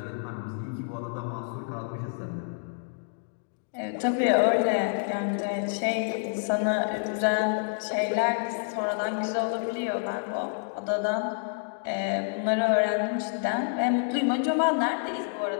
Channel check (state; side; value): silent; right; digital silence